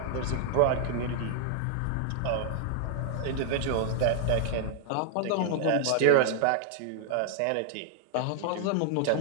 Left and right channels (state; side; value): different; both; correlation 0.00